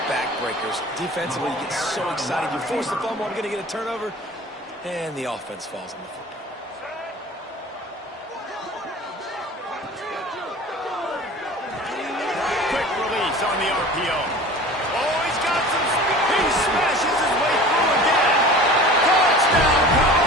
backbreakers. Defensively, you get so excited. You force the fumble, I'm going to get a turnover, and the offense falls on the football. Quick release on the RPO. Oh, he's got some speed. He smashes his way through again. Touchdown,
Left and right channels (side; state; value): both; normal; correlation 0.40